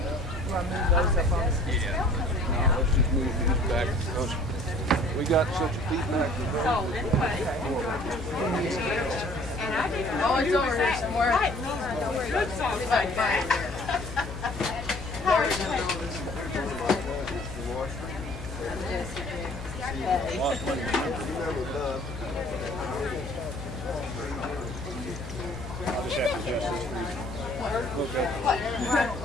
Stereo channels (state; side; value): noise; left; hum, 10 dB below the sound